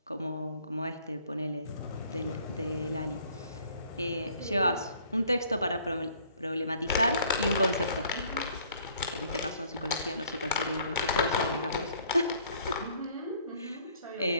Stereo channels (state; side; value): inverted; both; correlation -0.59